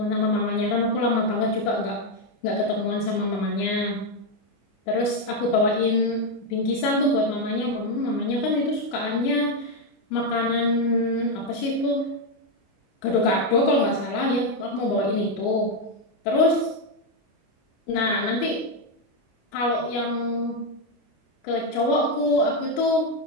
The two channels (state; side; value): late; right; 25 ms